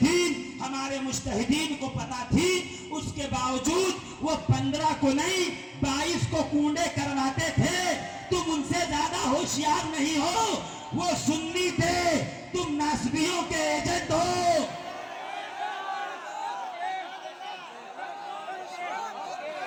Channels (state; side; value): identical; both; correlation 1.00